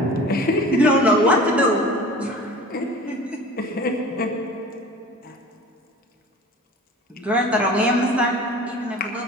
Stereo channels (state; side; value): normal; both; correlation 0.41